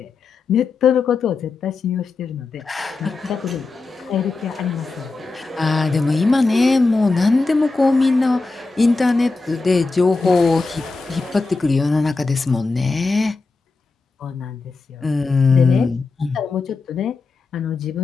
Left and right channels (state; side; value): quieter; right; 3.8 dB